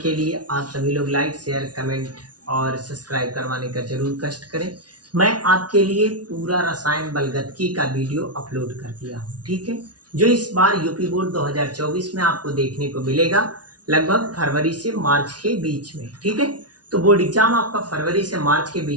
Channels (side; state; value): left; late; 0.69 ms